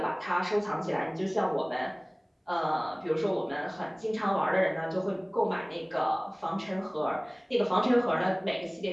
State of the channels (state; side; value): identical; both; correlation 1.00